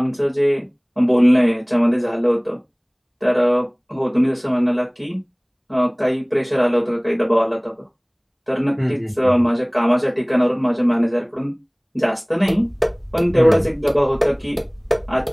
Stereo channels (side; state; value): both; identical; correlation 1.00